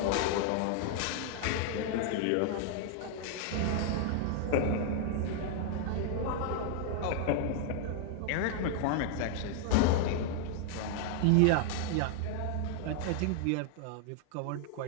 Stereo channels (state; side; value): different; both; correlation 0.00